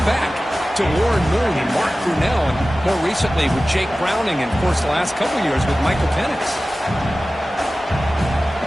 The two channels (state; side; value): normal; both; correlation 0.96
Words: back to Warren Moon and Mark Brunell, and more recently with Jake Browning, and of course the last couple years with Michael Penix.